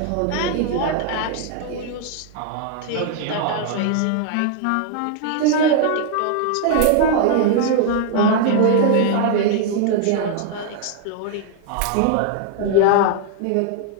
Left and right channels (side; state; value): both; different; correlation 0.00